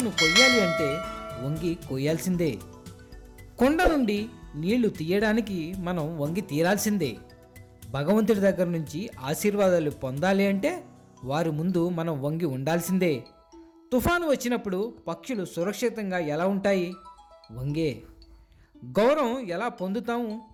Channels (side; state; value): both; identical; correlation 1.00